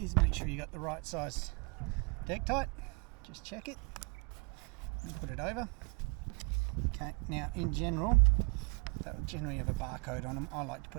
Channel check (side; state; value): left; quieter; 33.0 dB